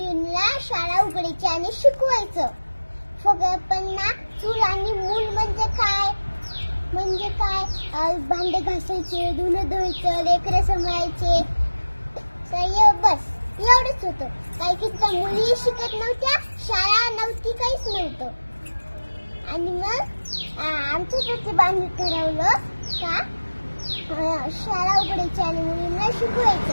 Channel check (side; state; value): both; inverted; correlation -1.00